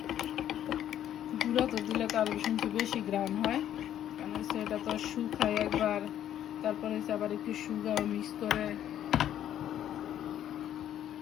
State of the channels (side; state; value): right; quieter; 11.0 dB